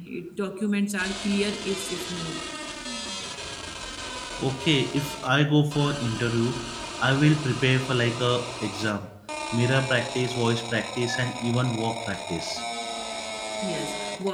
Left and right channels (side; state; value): both; identical; correlation 1.00